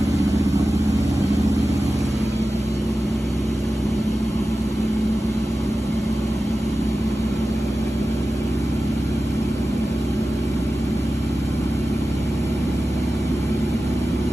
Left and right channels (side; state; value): both; normal; correlation 0.94